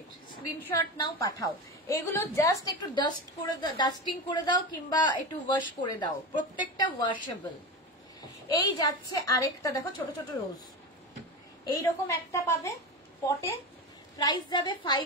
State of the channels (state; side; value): normal; both; correlation 0.22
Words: স্ক্রিনশট নাও পাঠাও। এগুলো জাস্ট একটু ডাস্টিং করে দাও কিংবা একটু ওয়াশ করে দাও, প্রত্যেকটা ওয়াশেবল। এই যাচ্ছে আরেকটা, দেখো ছোট ছোট রোজ, এইরকম একটা পাবে পটে, প্রাইস যাবে